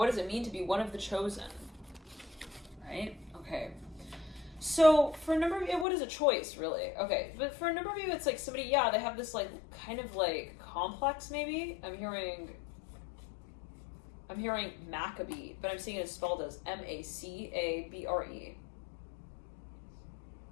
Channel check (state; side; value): drops out; right; at 5.9 s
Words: does it mean to be one of the chosen? Right? Okay. So for a number of you, what is a choice, really? Okay, but for a number of you, it's like somebody, they have this like kind of like complex, maybe. I'm hearing Maccabee, but I'm seeing it spelled as Macabre.